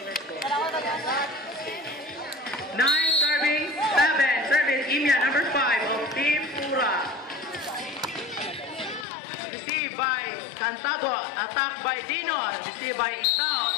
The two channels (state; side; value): drops out; right; at 9.1 s